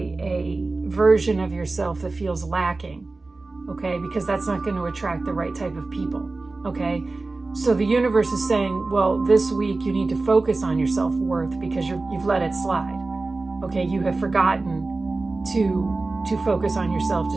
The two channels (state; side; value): quieter; left; 3.4 dB